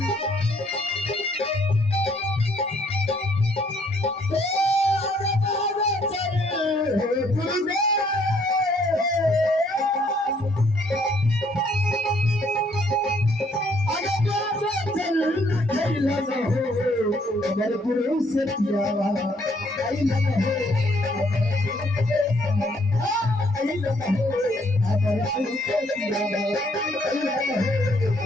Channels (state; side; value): normal; both; correlation 0.66